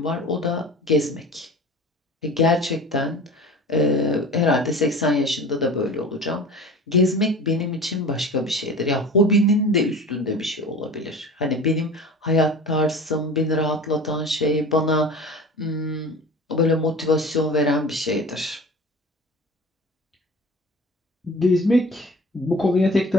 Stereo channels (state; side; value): normal; both; correlation 0.38